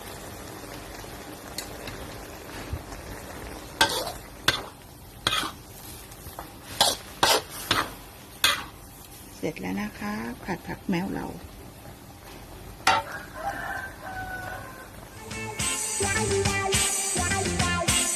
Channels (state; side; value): identical; both; correlation 1.00